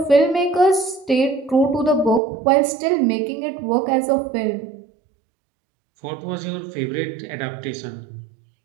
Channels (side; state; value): left; drops out; at 2.2 s